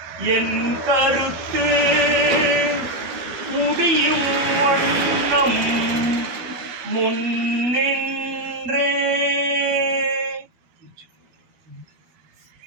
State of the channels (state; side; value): late; left; 12 ms